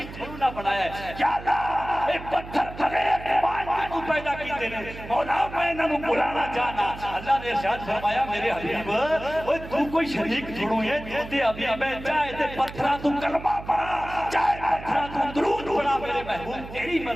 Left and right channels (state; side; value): noise; right; hum, 13 dB below the sound